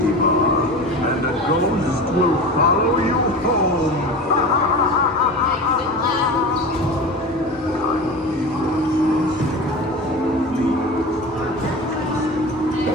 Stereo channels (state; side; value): normal; both; correlation 0.31